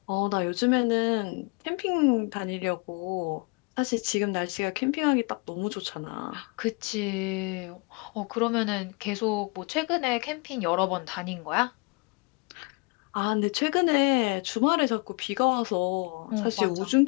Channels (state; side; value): quieter; right; 31.1 dB